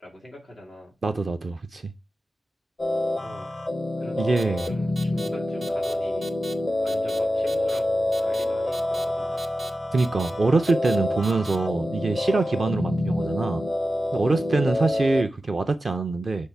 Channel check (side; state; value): both; normal; correlation 0.93